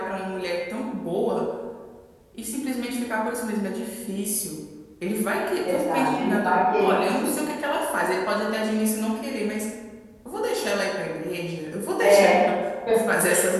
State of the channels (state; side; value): identical; both; correlation 1.00